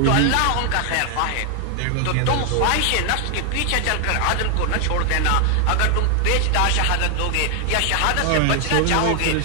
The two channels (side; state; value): both; different; correlation 0.00